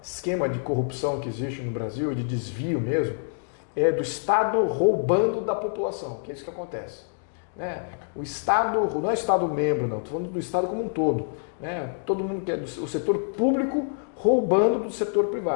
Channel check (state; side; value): silent; right; digital silence